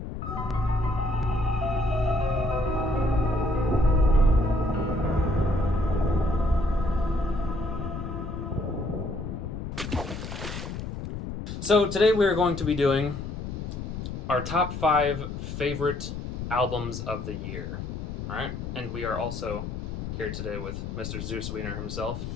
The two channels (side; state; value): left; noise; rumble, 6 dB below the sound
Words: So, today we are going to be doing our top 5 favorite albums of the year. Alright? And we are also here today with Mr. ZeusWiener himself.